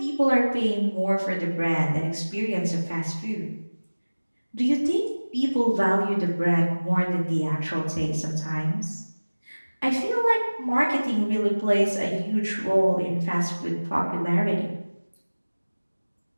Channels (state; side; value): inverted; both; correlation -1.00